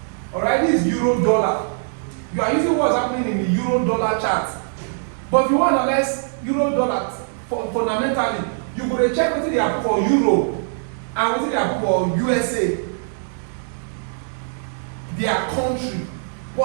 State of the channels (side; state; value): left; silent; 64 dB below the other